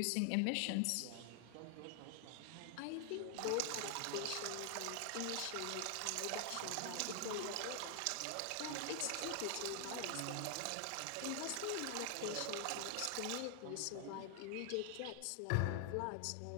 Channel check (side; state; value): both; different; correlation 0.00